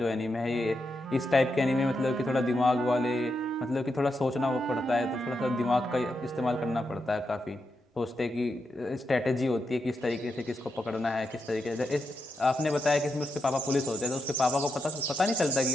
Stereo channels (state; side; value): normal; both; correlation 0.85